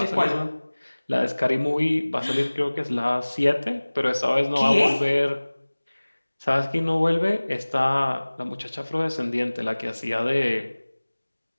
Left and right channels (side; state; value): both; inverted; correlation -1.00